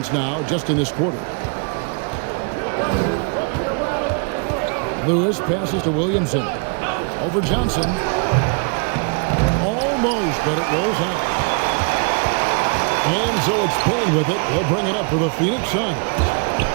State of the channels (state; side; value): quieter; left; 37.7 dB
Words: now just in this quarter. Lewis passes to Williamson. Over Johnson. Almost, but it rolls out. And so it's Payne with it. He'll bring it up for the Phoenix Suns.